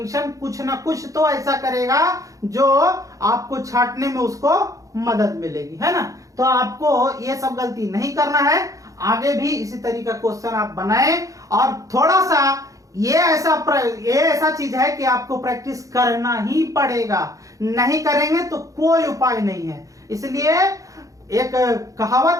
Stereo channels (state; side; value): late; left; 0.16 ms